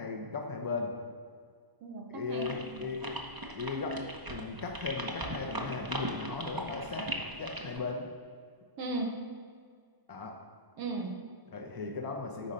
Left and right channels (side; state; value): left; late; 1.0 ms